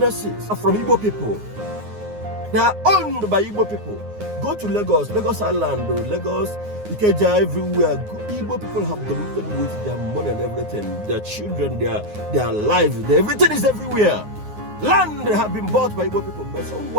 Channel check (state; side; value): late; left; 9.6 ms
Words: are from Igbo people. They are owned by Igbo people. Go to Lagos, Lagos Island, Lagos, Ikeja, everywhere. Igbo people have dominated with their money and everything, their children, their lives, everything is everywhere. Land have been bought by Igbo people, but